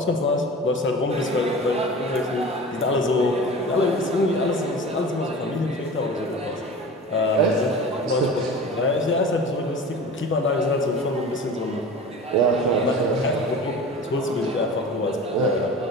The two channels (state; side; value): normal; both; correlation 0.36